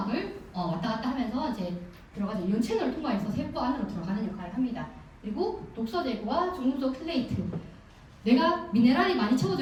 왔다 갔다 하면서 이제 들어가죠. 이온 채널을 통과해서 세포 안으로 들어가는 역할을 합니다. 그리고 독소 제거와 중금속 킬레이트. 내가 미네랄이 많이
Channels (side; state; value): both; identical; correlation 1.00